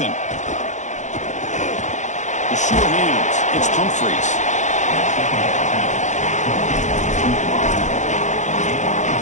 The sure hands. It's Humphreys.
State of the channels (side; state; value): right; late; 0.35 ms